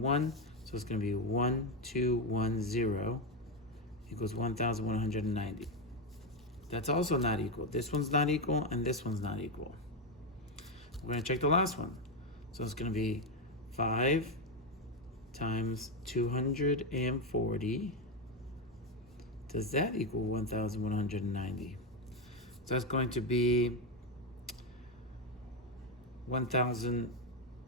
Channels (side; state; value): both; normal; correlation 0.08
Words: So it's going to be 1210 equals 1,190. That's also not equal. This one's not equal, and this one's not equal. We're going to check the last one. So it's going to be 5 times 240. Does that equal 1,190? So that's going to be 1,000.